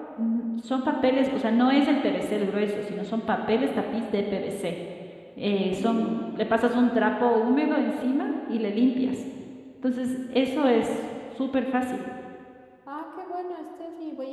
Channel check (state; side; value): identical; both; correlation 1.00